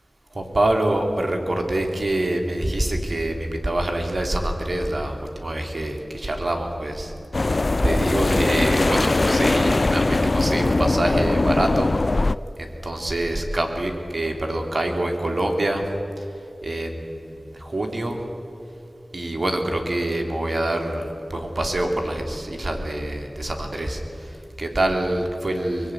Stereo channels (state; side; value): normal; both; correlation 0.96